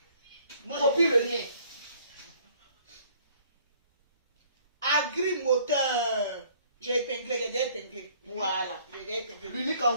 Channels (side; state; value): both; inverted; correlation -0.58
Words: Copie le lien. Agrimoteur. J'ai épinglé, Voilà. L'unique